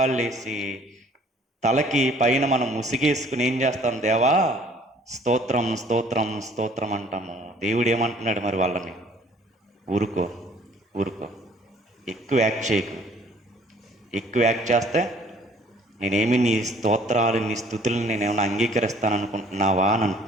వేసి తలకి పైన మనం ముసిగేసుకుని ఏం చేస్తాం? దేవా స్తోత్రం స్తోత్రం స్తోత్రం అంటాము. దేవుడు ఏమంటున్నాడు మరి వాళ్ళని? ఊరుకో ఊరుకో, ఎక్కువ యాక్ట్ చేయకు. ఎక్కువ యాక్ట్ చేస్తే నేనేమి నీ స్తోత్రాలు నీ స్తుతులను నేనేమైనా అంగీకరిస్తాను అనుకుంటున్నావా అని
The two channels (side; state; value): both; normal; correlation 0.57